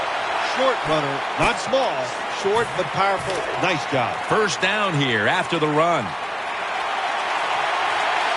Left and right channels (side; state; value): both; identical; correlation 1.00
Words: short runner. Not small, short but powerful. Nice job. First down here after the run.